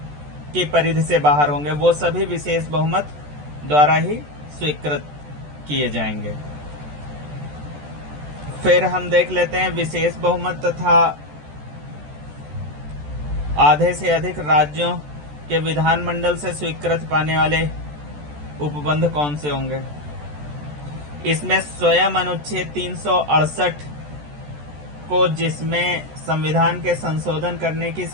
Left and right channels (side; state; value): left; late; 14 ms